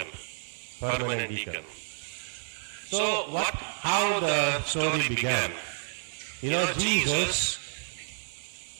Permanent deacon. So, how the story began? You know, Jesus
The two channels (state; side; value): silent; left; digital silence